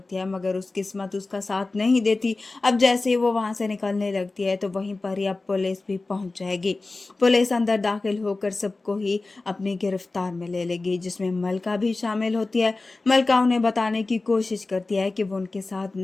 है, मगर उस किस्मत उसका साथ नहीं देती। अब जैसे ही वो वहां से निकलने लगती है तो वहीं पर ही अब पुलिस भी पहुंच जाएगी। पुलिस अंदर दाखिल होकर सबको ही अपनी गिरफ्तार में ले लेगी, जिसमें मलका भी शामिल होती है। मलका उन्हें बताने की कोशिश करती है कि वो उनके साथ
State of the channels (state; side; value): quieter; right; 3.4 dB